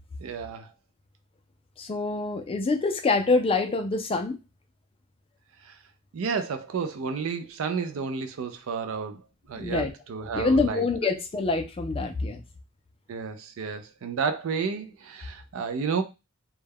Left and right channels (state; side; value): normal; both; correlation 0.31